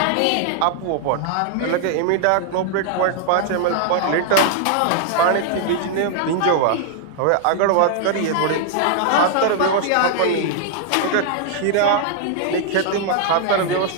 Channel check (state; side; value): different; both; correlation 0.00